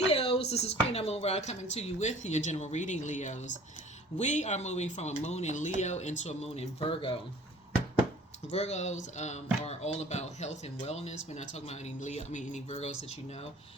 This is Queen Amun Ra coming to you with your general reading, Leos. We are moving from a moon in Leo into a moon in Virgo. Virgos are all about health and wellness. We're not talking about any Leo, any Virgos that you know,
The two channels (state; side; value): normal; both; correlation 0.49